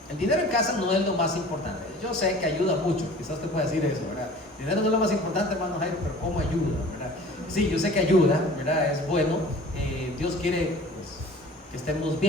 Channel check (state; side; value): normal; both; correlation 0.45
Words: El dinero en casa no es lo más importante. Yo sé que ayuda mucho, quizás te pueda decir eso, ¿verdad? El dinero no es lo más importante, hermano Jairo, pero ¿cómo ayuda, verdad? Sí, yo sé que ayuda, ¿verdad? Es bueno. Dios quiere, pues, que estemos